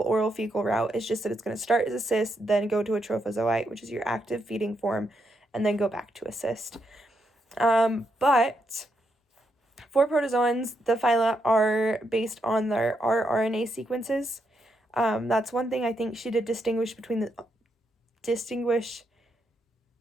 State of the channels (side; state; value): both; normal; correlation 0.80